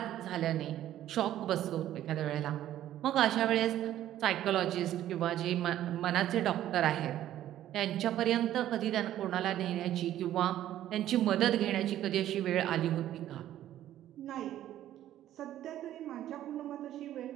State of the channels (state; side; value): quieter; left; 12.5 dB